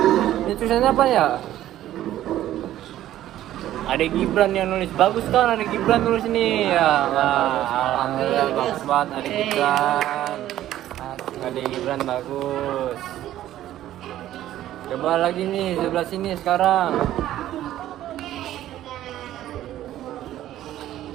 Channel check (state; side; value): quieter; left; 13.1 dB